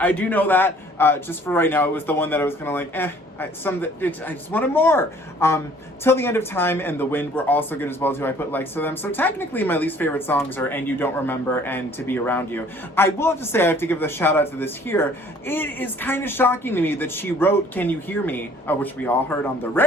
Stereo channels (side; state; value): both; normal; correlation 0.55